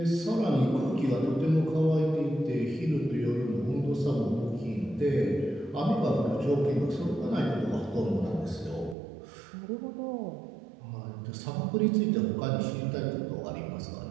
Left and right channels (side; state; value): left; drops out; at 9.0 s